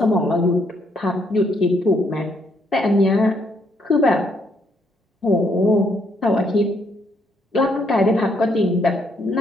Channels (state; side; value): normal; both; correlation 0.72